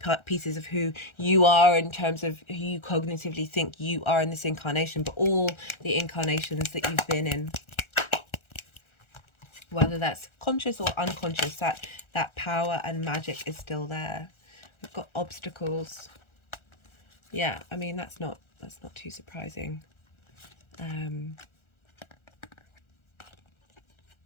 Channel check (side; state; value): right; late; 1.4 ms